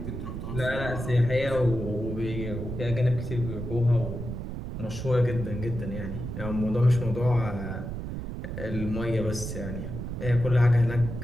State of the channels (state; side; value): noise; right; rumble, 6 dB below the sound